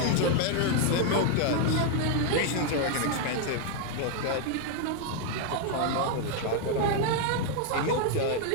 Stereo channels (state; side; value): different; both; correlation 0.00